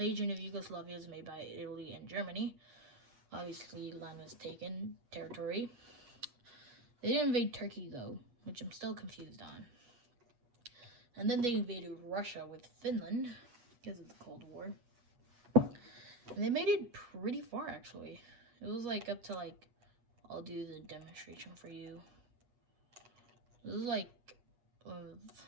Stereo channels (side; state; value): left; late; 8.1 ms